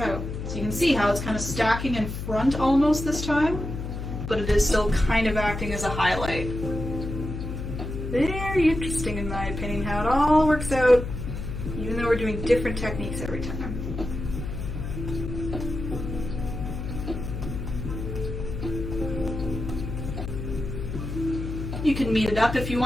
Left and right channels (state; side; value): noise; left; hum, 6 dB below the sound